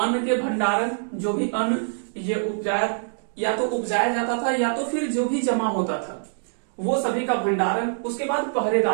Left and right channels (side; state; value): left; silent; digital silence